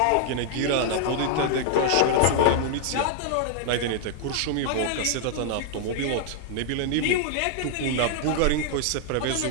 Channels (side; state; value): both; different; correlation 0.00